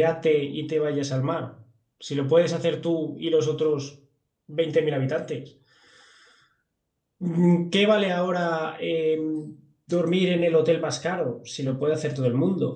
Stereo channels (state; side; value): identical; both; correlation 1.00